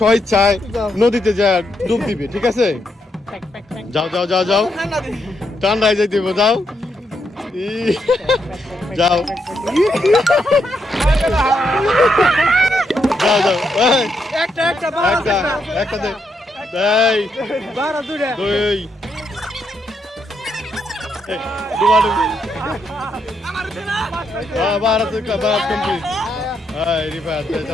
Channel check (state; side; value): normal; both; correlation 0.79